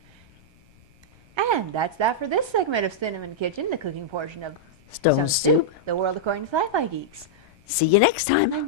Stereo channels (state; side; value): noise; left; rumble, 29 dB below the sound